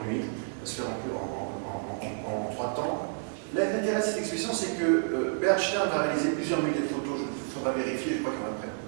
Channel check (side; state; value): left; silent; digital silence